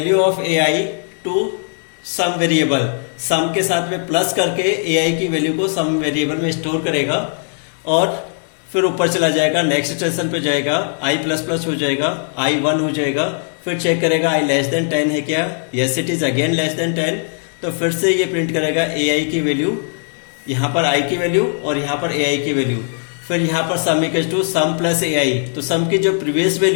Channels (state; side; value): silent; right; 67 dB below the other